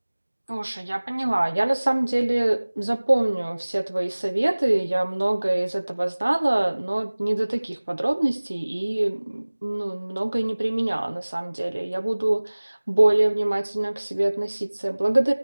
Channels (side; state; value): both; inverted; correlation -1.00